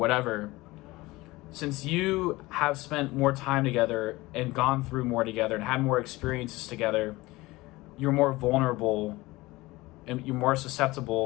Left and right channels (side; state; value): right; quieter; 20.4 dB